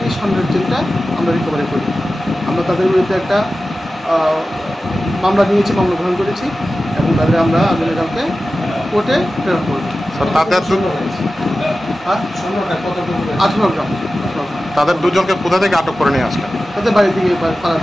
এই স্বর্ণের চেনটা আমরা রিকভারি করি। আমরা তাদের বিরুদ্ধে একটা মামলা নিয়েছি, মামলা গ্রহণ করেছি এবং তাদের আমরা আগামীকালকে কোর্টে প্রেরণ করব। 18 গ্রাম। তাদের 2জনকে কোথা থেকে আটক করে নিয়ে আসলেন? তাদের বাড়ি থেকে, পাড়া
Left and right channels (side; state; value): both; normal; correlation 0.95